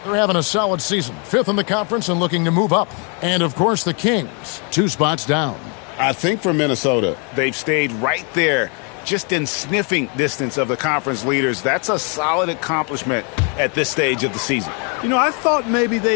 They're having a solid season. 5th in the conference and looking to move up. And, of course, the Kings, 2 spots down. I think for Minnesota, they've stayed right there, just in sniffing distance of the conference leaders. That's a solid accomplishment at this stage of the season. You know, I thought maybe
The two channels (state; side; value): quieter; right; 36.3 dB